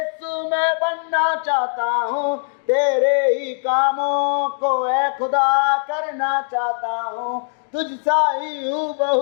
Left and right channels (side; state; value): right; silent; 60 dB below the other